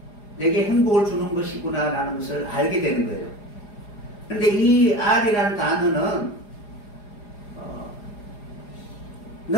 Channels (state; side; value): late; right; 4.9 ms